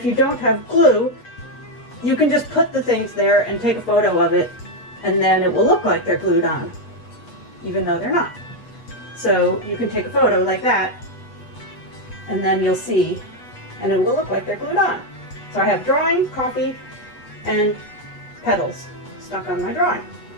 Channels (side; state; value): right; late; 8.2 ms